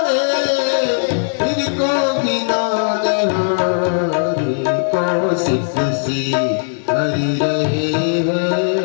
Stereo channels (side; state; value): right; silent; 68 dB below the other